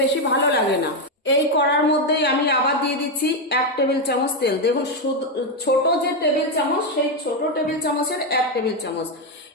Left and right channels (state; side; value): normal; both; correlation 0.06